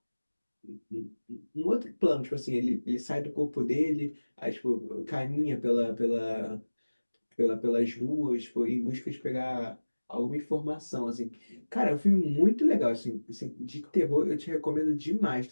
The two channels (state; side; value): inverted; both; correlation -1.00